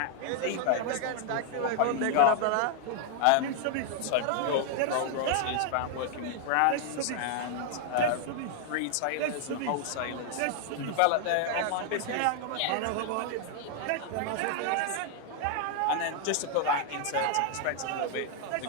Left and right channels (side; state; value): both; different; correlation 0.00